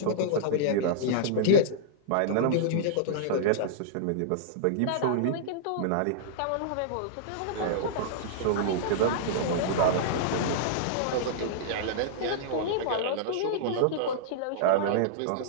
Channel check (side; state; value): both; different; correlation -0.02